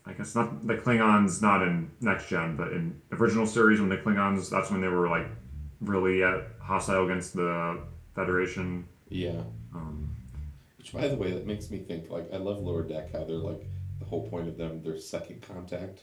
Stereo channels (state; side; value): identical; both; correlation 1.00